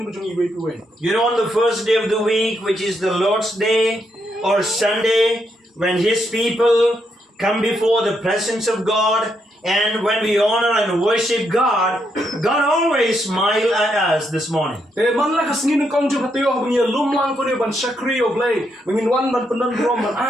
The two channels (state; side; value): normal; both; correlation 0.78